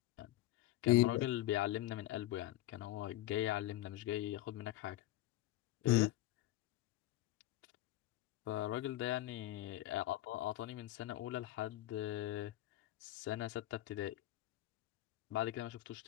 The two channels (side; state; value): right; quieter; 15.5 dB